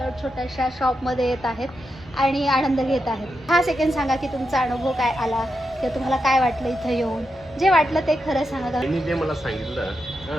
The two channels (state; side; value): normal; both; correlation 0.86